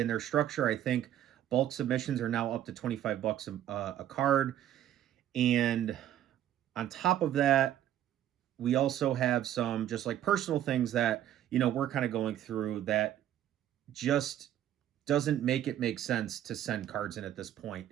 structure. I think bulk submissions are now up to $25 a card, and on top of that, we also have some just like personal things that we're kind of going through that just doesn't make sense to send cards in at this point.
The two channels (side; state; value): left; quieter; 11.6 dB